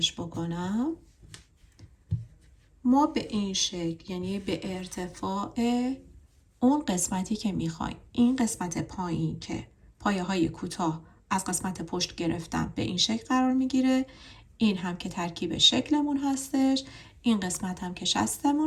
بکنم. ما به این شکل، یعنی به ارتفاع اون قسمتی که میخوایم، این قسمت پایین که پایه های کوتاه از قسمت پشت گرفتم به این شکل قرار میگیره، این هم که ترکیب شکلمون هستش، این قسمت هم که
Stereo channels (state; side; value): identical; both; correlation 1.00